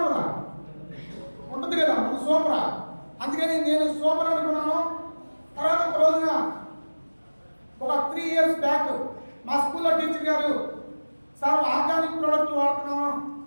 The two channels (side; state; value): both; inverted; correlation -1.00